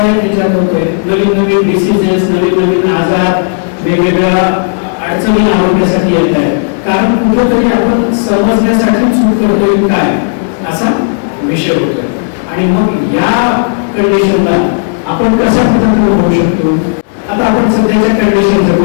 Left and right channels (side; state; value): right; silent; digital silence